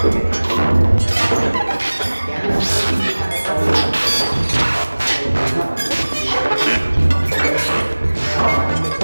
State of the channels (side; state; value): both; inverted; correlation -1.00